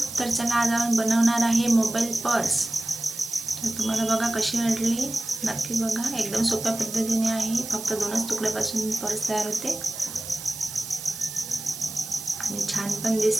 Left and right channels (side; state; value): right; noise; hiss, 10 dB below the sound